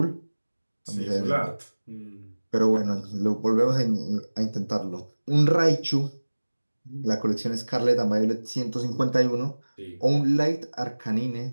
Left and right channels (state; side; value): inverted; both; correlation -1.00